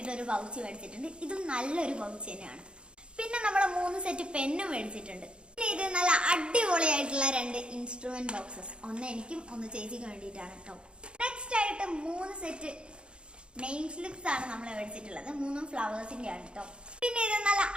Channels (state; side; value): late; left; 0.055 ms